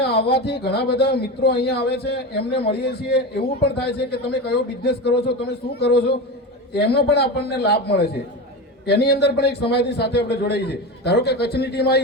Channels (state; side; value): normal; both; correlation 0.22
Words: આવવાથી ઘણા બધા મિત્રો અહીંયા આવે છે, એમને મળીએ છીએ। એવું પણ થાય છે કે તમે કયો બિઝનેસ કરો છો, તમે શું કરો છો, એનો પણ આપણને લાભ મળે છે। એની અંદર પણ એક સમાજની સાથે આપણે જોડાઈએ છીએ। ધારો કે કચ્છની ટીમ